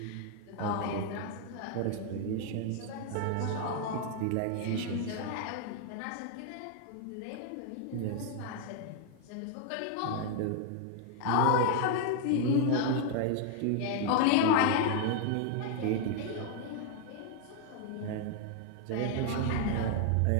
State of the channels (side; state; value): both; different; correlation 0.00